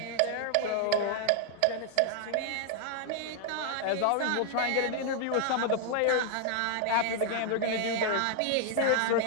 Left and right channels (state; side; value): different; both; correlation 0.00